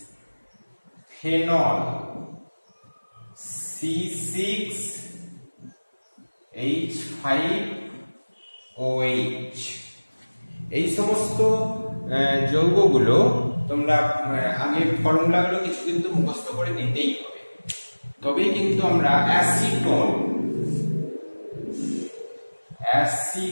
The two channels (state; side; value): inverted; both; correlation -1.00